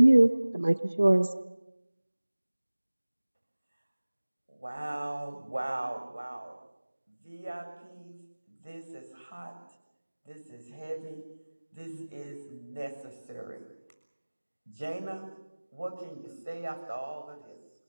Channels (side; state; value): both; inverted; correlation -1.00